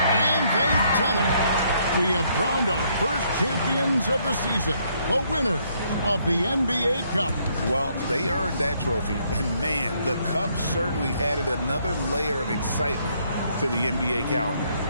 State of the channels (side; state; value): both; inverted; correlation -0.70